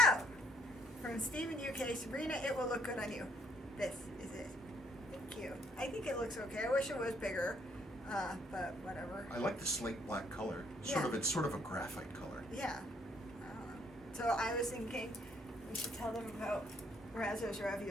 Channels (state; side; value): normal; both; correlation 0.67